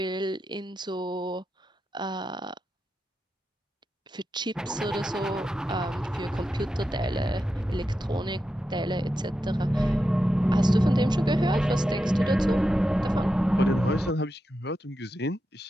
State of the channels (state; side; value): normal; both; correlation 0.89